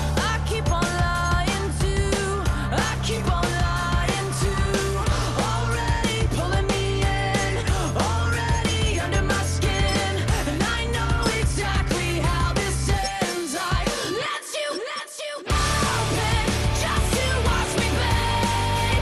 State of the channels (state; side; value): identical; both; correlation 1.00